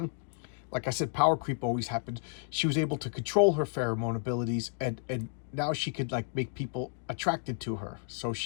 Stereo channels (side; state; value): right; silent; 55 dB below the other